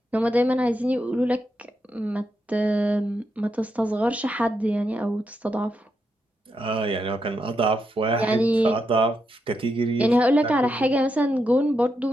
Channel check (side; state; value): both; normal; correlation 0.83